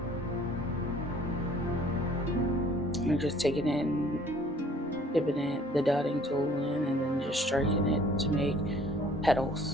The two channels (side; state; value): both; normal; correlation 0.56